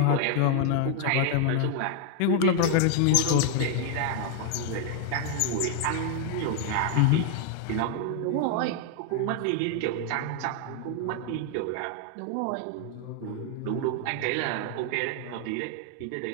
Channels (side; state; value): both; different; correlation 0.00